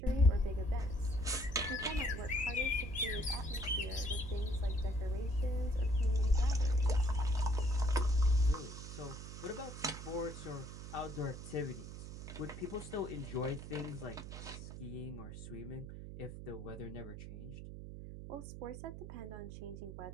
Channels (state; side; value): noise; right; hum, 10 dB below the sound